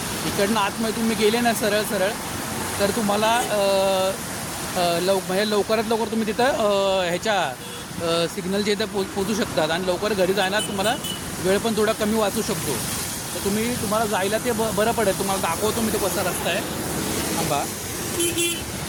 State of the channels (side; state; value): both; identical; correlation 1.00